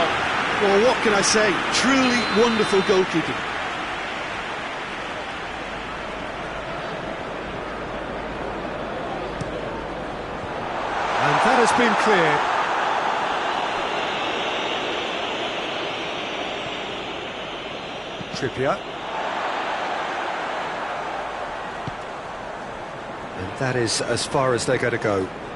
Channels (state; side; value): identical; both; correlation 1.00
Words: Well, what can I say? Truly wonderful goalkeeping. And that has been cleared. Trippier. And that is as far as they're going to go.